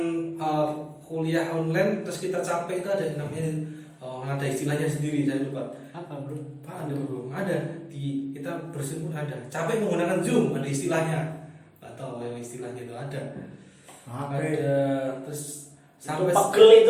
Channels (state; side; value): identical; both; correlation 1.00